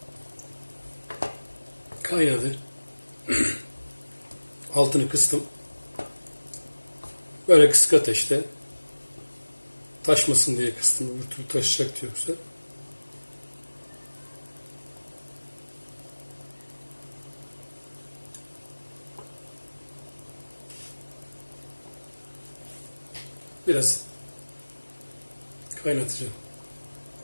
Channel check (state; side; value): inverted; both; correlation -1.00